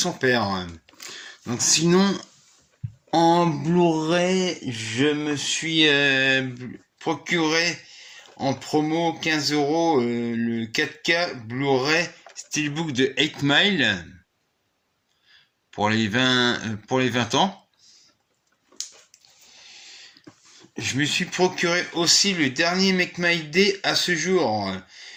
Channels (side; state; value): both; identical; correlation 1.00